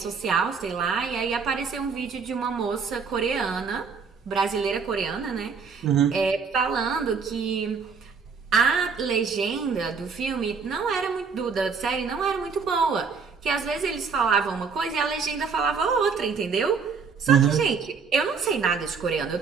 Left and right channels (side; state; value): left; quieter; 5.5 dB